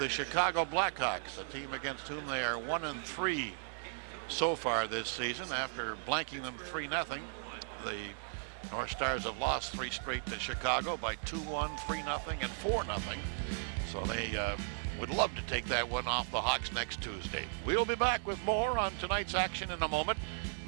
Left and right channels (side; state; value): left; silent; digital silence